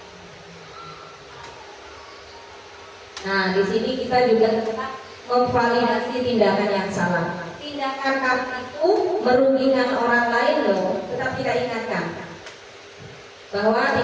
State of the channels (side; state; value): both; identical; correlation 1.00